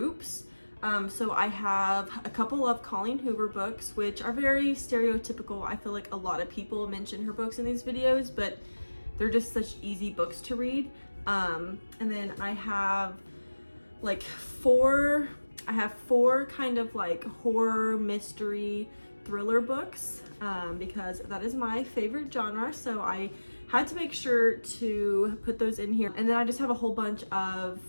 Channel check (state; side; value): inverted; both; correlation -1.00